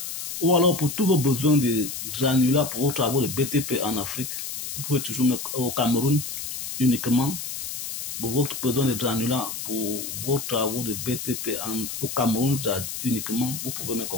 Ou alors, pour tous vos besoins de granulats pour vos travaux de BTP en Afrique, vous pouvez toujours au Cameroun uniquement. Pour votre besoin de granulats pour vos travaux de BTP au Cameroun uniquement, vous pouvez me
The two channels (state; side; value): noise; left; hiss, 6 dB below the sound